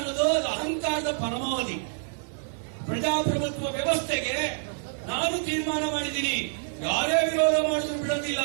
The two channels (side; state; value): left; silent; 60 dB below the other